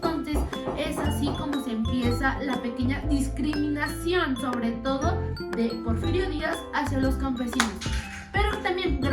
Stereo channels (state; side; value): identical; both; correlation 1.00